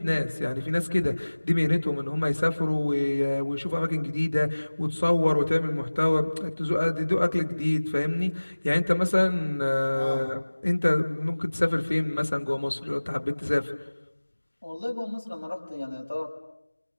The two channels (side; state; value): both; inverted; correlation -1.00